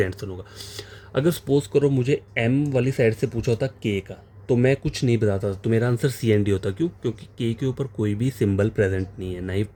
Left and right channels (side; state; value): both; identical; correlation 1.00